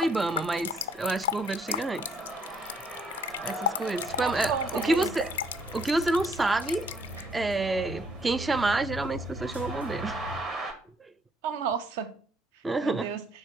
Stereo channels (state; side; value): normal; both; correlation 0.65